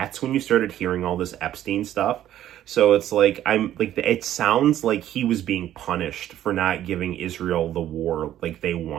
when you started hearing all this Epstein stuff. So it's like, it sounds like he was being punished for not giving Israel the war like they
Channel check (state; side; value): quieter; left; 12.1 dB